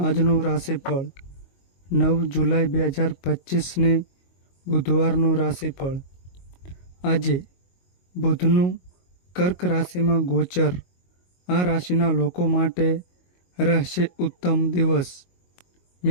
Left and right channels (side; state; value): right; late; 22 ms